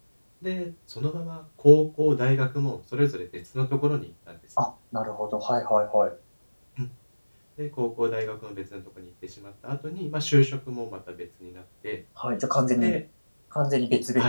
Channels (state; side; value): inverted; both; correlation -1.00